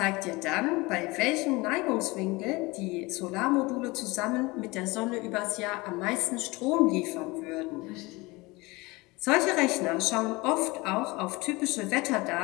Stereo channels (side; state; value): right; quieter; 23.3 dB